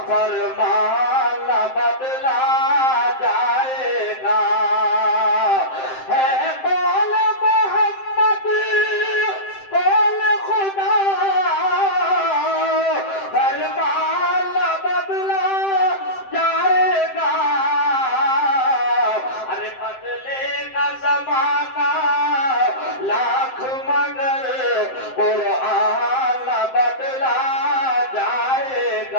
فرمان نہ بدلا جائے گا۔ ہے قول محمد قول خدا، فرمان نہ بدلا جائے گا۔ ارے بدلے گا زمانہ لاکھ مگر قرآن نہ بدلا جائے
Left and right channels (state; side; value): late; right; 7.7 ms